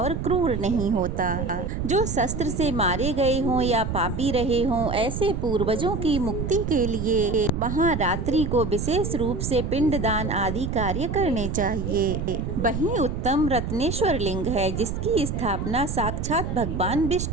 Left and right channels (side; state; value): right; noise; rumble, 3 dB below the sound